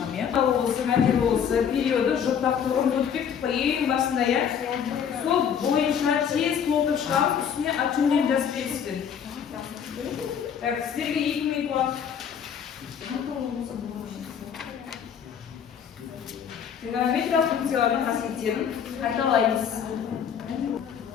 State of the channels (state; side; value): quieter; right; 7.8 dB